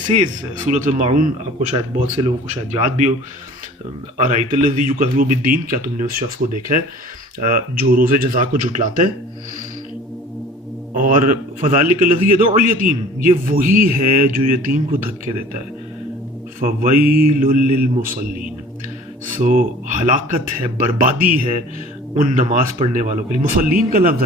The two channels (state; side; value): normal; both; correlation 0.47